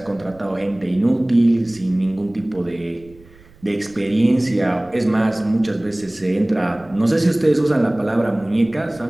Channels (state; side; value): noise; right; rumble, 26 dB below the sound